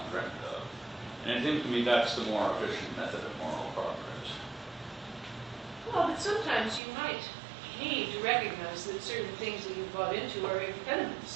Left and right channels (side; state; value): left; drops out; at 6.8 s